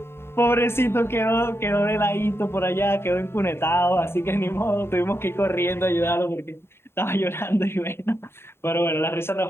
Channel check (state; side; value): late; right; 0.12 ms